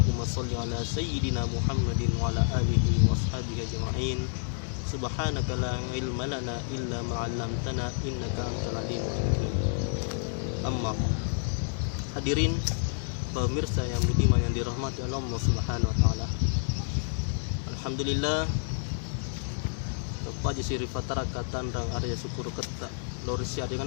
shalli ala sayyidina Muhammadin wa ala alihi wa ashabihi ajma'in. Subhanaka la ilma lana illa ma 'allamtana innaka antal alimul hakim. Amma hadirin pemirsa yang budiman yang dirahmati Allah Subhanahu wa taala. Alhamdulillah tepaji siri fatara katanrang arya syukur ketta lorisia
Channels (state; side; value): silent; right; digital silence